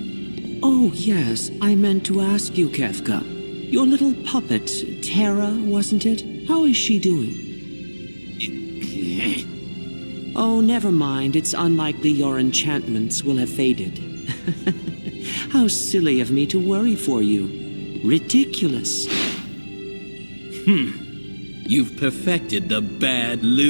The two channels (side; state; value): both; inverted; correlation -1.00